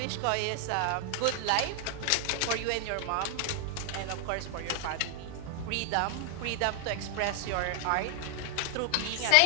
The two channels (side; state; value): both; different; correlation 0.00